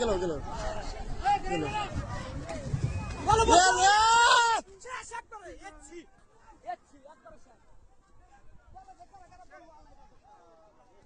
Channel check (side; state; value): both; identical; correlation 1.00